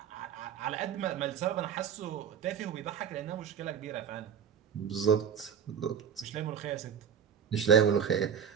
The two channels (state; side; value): quieter; left; 7.8 dB